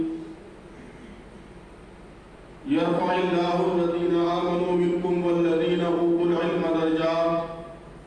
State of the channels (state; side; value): identical; both; correlation 1.00